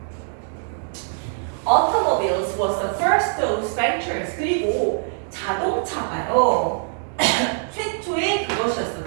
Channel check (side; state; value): left; silent; digital silence